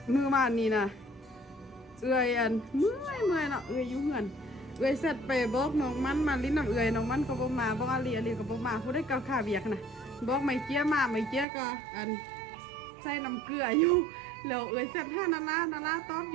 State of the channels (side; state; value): left; drops out; at 11.5 s